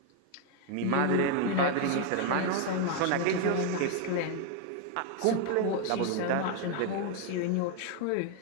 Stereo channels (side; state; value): both; different; correlation 0.01